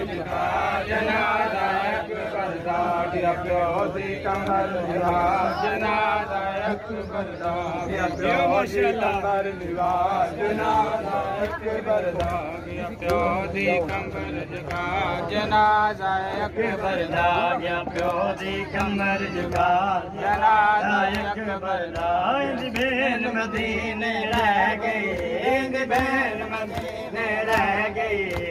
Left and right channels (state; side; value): identical; both; correlation 1.00